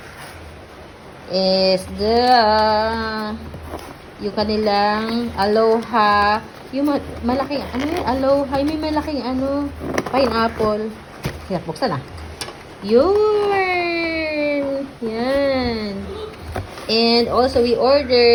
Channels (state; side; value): identical; both; correlation 1.00